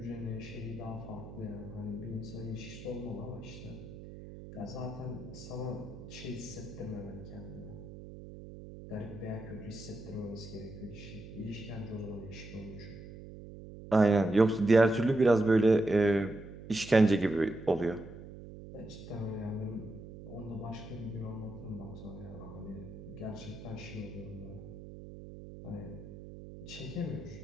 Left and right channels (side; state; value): right; noise; hum, 13 dB below the sound